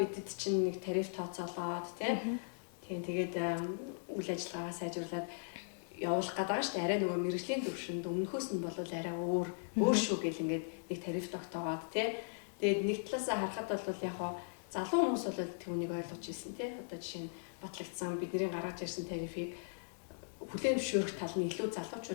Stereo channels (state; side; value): silent; right; digital silence